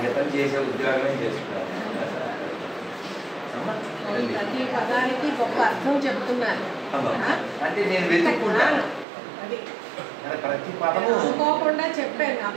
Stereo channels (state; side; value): drops out; left; at 9.1 s